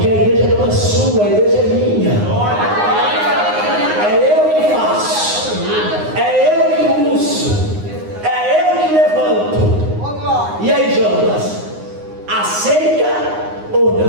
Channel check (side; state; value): left; late; 9.6 ms